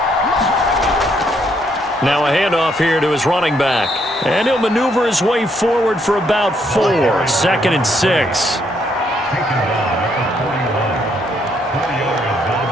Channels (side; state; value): both; normal; correlation 0.72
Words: Now a handoff here to his running back. And he'll maneuver his way forward for about 4. 2nd and 6.